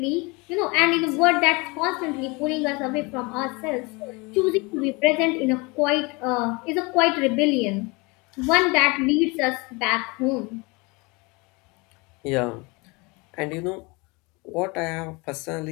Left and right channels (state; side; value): quieter; right; 26.9 dB